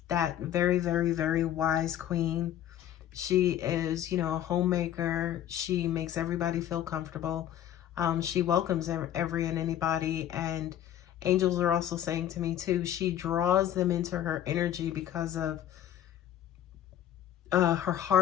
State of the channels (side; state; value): right; quieter; 11.1 dB